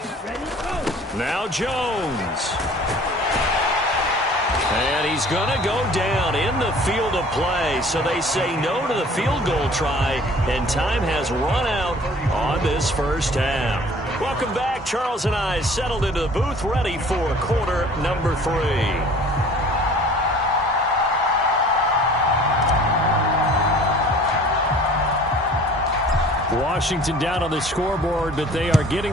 Now Jones. And he's going to go down in the field of play. So they say no to the field goal try, and time has run out on this first half. Welcome back. Charles and I settled into the booth, ready for quarter number 3. Washington down on the scoreboard, but they are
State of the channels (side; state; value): both; normal; correlation 0.49